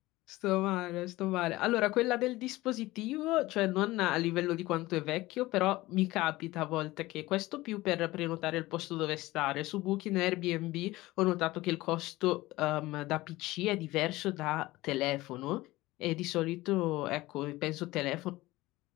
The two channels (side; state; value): right; quieter; 18.7 dB